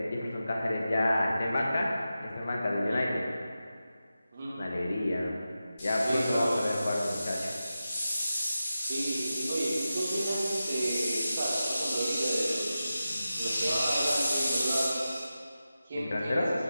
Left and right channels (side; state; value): both; inverted; correlation -0.92